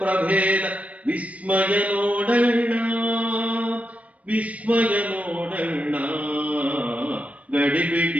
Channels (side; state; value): left; late; 0.067 ms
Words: ವಿಸ್ಮಯ ನೋಡಣ್ಣ, ವಿಸ್ಮಯ ನೋಡಣ್ಣ,